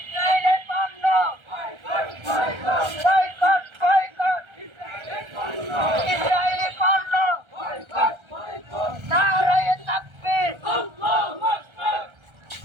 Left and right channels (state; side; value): late; left; 1.3 ms